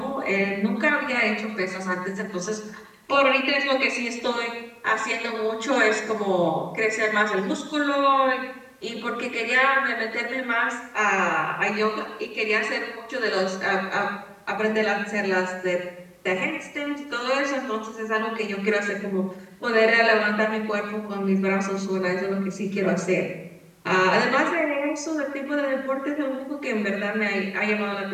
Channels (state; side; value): identical; both; correlation 1.00